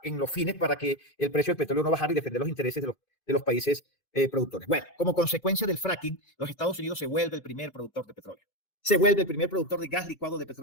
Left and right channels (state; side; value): late; right; 2.6 ms